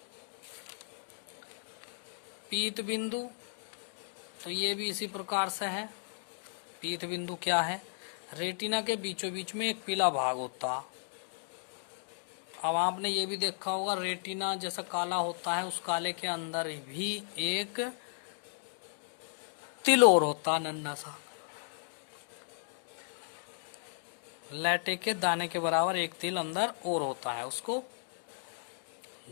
पीत बिंदु, तो ये भी इसी प्रकार से है। पीत बिंदु क्या है, रेटिना के बीचों बीच में एक पीला भाग होता। अब आपने ये भी देखा होगा रेटिना जैसा काला होता है, उस काले के अंदर भी एक तिल और होता, नन्हा सा लैटे के दाने के बराबर एक तिल अंदर और होता है, उसको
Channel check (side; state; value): right; silent; digital silence